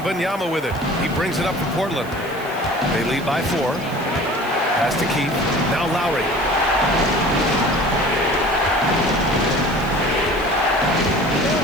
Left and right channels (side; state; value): right; noise; hiss, 21 dB below the sound